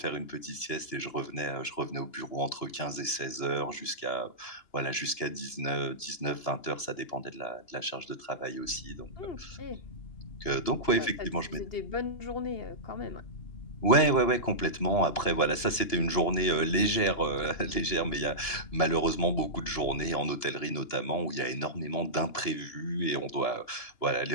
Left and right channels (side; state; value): right; late; 2.9 ms